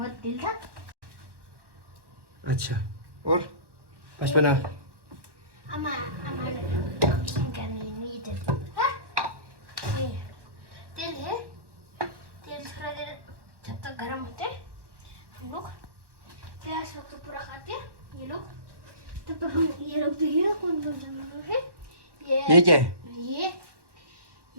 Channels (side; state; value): left; late; 1.1 ms